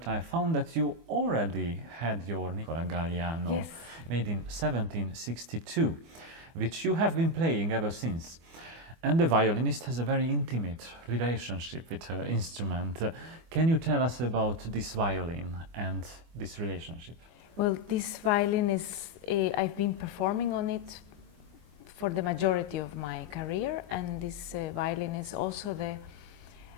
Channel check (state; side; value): late; left; 24 ms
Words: I found that you already had your Nicola Galliano, yes, made in 1762, which you have been playing ever since. And the violinist has a very intimate relationship with her instrument. Can you tell us about this violin and this relationship? Well, this violin is, I've been performing on it for the majority of my career, and this violin is also the